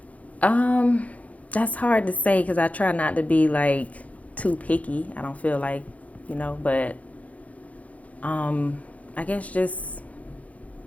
That's hard to say because I try not to be like too picky. I don't feel like, but I guess just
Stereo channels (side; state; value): right; late; 0.068 ms